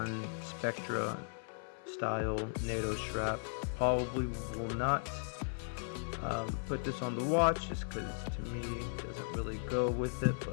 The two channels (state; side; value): silent; right; 53 dB below the other